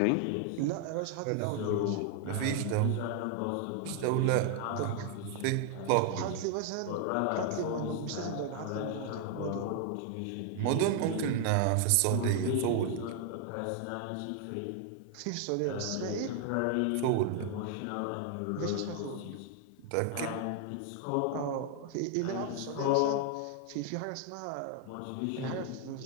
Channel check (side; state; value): both; different; correlation 0.00